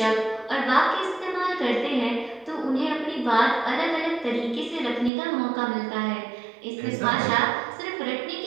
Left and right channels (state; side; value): drops out; left; at 5.1 s